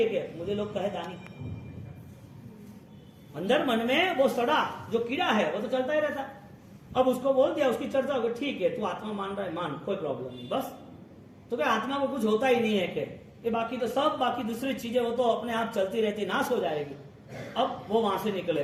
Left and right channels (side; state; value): both; identical; correlation 1.00